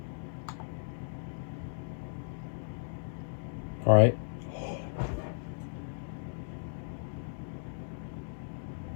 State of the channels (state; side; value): silent; right; digital silence